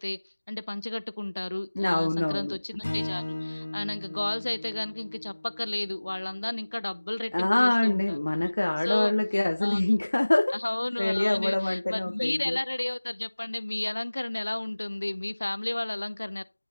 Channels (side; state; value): both; inverted; correlation -1.00